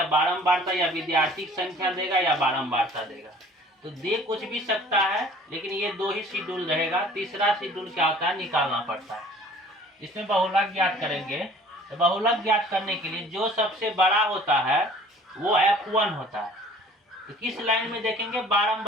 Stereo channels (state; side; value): normal; both; correlation 0.51